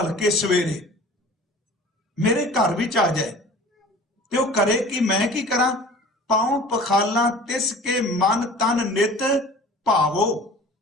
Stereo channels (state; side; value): normal; both; correlation 0.44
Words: ਸਵੇਰੇ ਮੇਰੇ ਘਰ ਵਿੱਚ ਆ ਜਾਏ ਤੇ ਉਹ ਕਰੇ ਕਿ ਮੈਂ ਕੀ ਕਰਾਂ, ਪਾਉ ਪਖਾਲਾਂ ਤਿਸ ਕੇ ਮਨ ਤਨ ਨਿਤ ਭਾਵੋ,